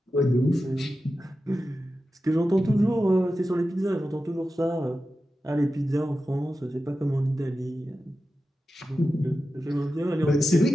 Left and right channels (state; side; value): normal; both; correlation 0.92